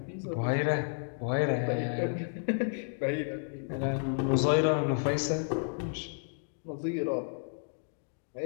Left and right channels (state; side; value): silent; right; digital silence